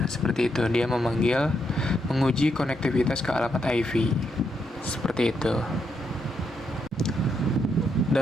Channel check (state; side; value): normal; both; correlation 0.79